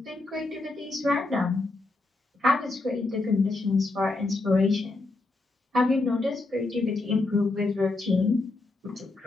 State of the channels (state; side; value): quieter; right; 3.2 dB